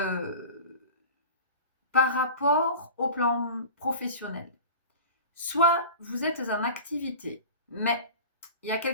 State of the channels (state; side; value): inverted; both; correlation -0.36